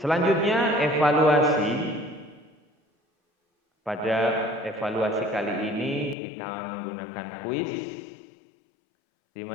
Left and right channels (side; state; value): right; drops out; at 6.2 s